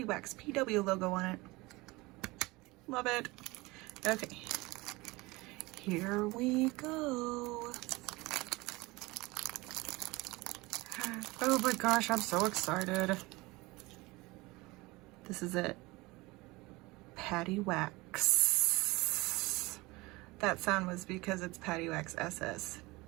Waxx PW logo on it. Love it. Okay, here we go. Oh my gosh, I'm so excited. This is it. Paddy Waxx. That sound was because it's Paddy Waxx SS.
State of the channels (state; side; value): quieter; left; 22.3 dB